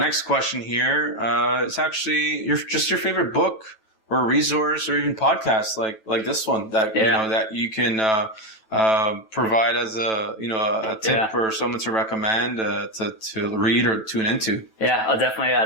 question here. It's actually your favorite book or resource or even podcast like this one that that you can provide as a tip for someone to recommend to read or tune into. Yeah, I'll definitely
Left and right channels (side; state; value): right; late; 9.2 ms